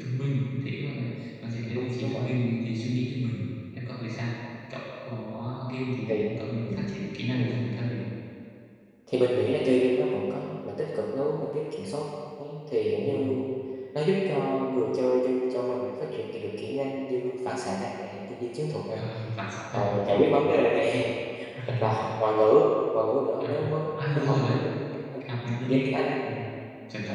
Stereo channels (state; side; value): identical; both; correlation 1.00